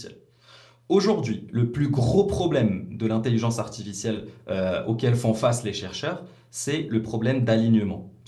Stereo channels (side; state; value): both; identical; correlation 1.00